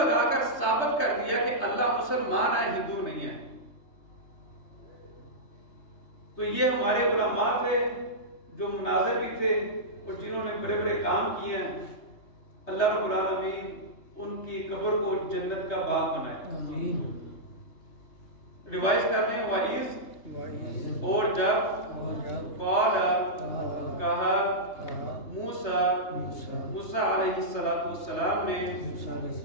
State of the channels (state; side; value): late; right; 3.3 ms